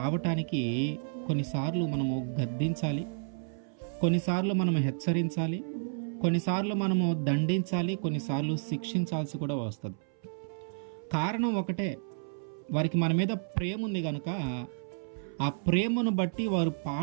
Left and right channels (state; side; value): silent; left; 57 dB below the other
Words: కొన్నిసార్లు మనము గద్దించాలి, కొన్నిసార్లు మనము హెచ్చరించాలి, కొన్నిసార్లు మనము దండించాలి, కొన్నిసార్లు శిక్షించాల్సి కూడా వస్తుంది. కారణం ఒకటే, వారికి మన మీద ప్రేమ ఉంది కనుక ఆ ప్రేమను బట్టి వారు